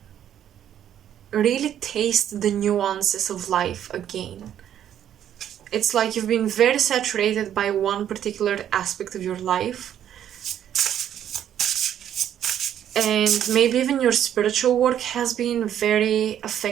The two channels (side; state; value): left; quieter; 10.3 dB